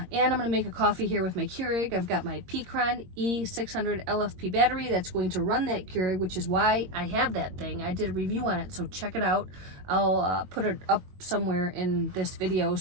and I'm going to make a coffee here with my Keurig. I've got my Peakron E600 LFP battery that's going to run that Keurig, which is why I have that thing. I did a review on it, so check it out. I'll put it up somewhere in this video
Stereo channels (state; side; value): late; left; 22 ms